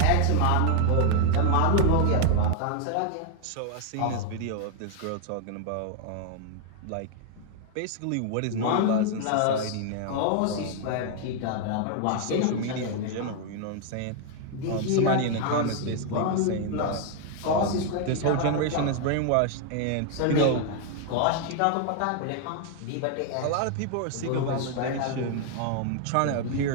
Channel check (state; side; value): different; both; correlation 0.00